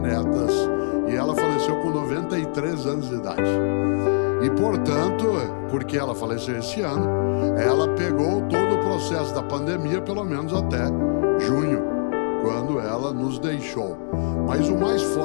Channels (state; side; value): silent; right; digital silence